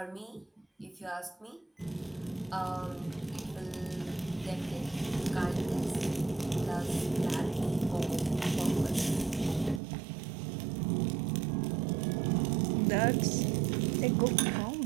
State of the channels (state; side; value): drops out; left; at 9.8 s